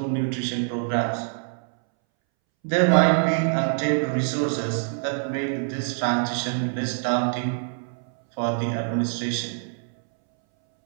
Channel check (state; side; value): silent; left; 62 dB below the other